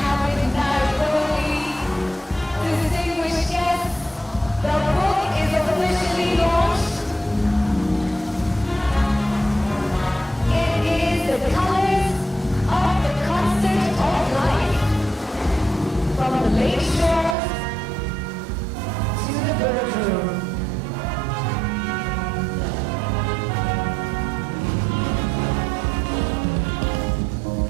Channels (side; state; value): left; drops out; at 17.4 s